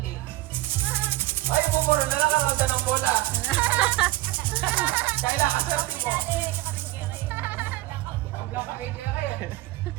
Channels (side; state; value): left; quieter; 18.0 dB